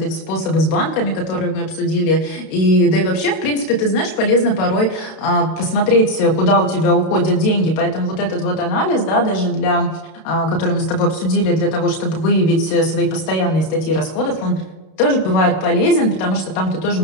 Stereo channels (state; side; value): late; right; 32 ms